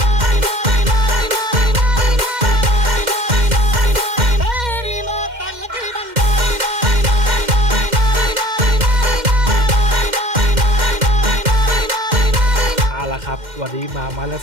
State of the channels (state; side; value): late; left; 2.1 ms